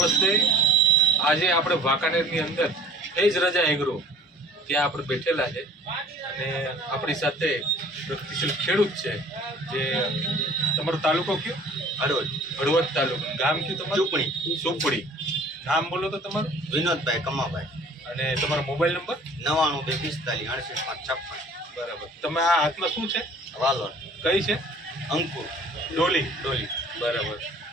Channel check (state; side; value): normal; both; correlation 0.50